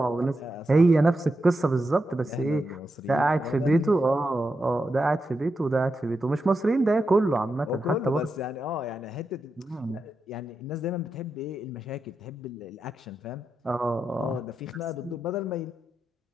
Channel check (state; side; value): normal; both; correlation 0.87